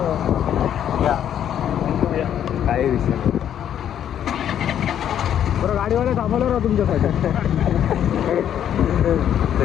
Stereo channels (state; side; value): quieter; right; 9.9 dB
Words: या काय विषय नाही. बरं गाडीवाला थांबवलं ना तुमच्यासाठी. ते